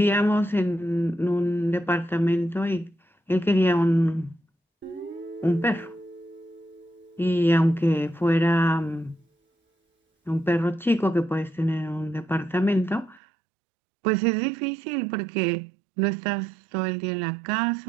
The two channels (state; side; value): drops out; left; at 13.2 s